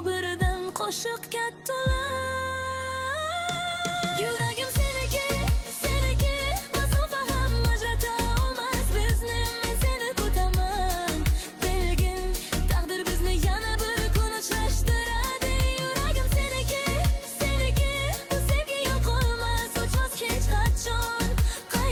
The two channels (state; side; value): identical; both; correlation 1.00